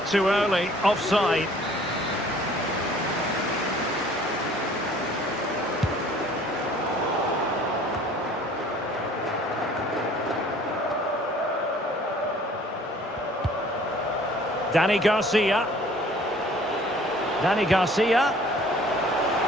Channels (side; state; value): both; normal; correlation 0.53